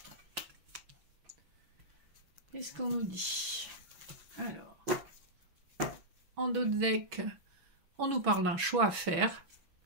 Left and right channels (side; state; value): left; late; 6.1 ms